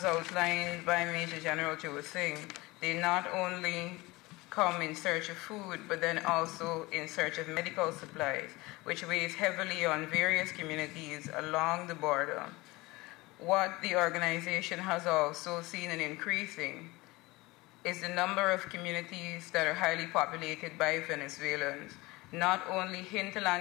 outlined by Major General Joe Singh, they not only come in search of food, but then also in search of medical supplies, which weighs heavily on various communities along the border. What the organization has also seen an increasing is the number of communities that are highly populated by Venezuelans, not only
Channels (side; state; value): right; quieter; 21.7 dB